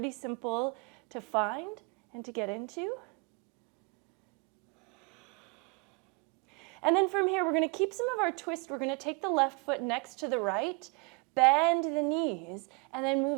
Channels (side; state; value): left; quieter; 31.7 dB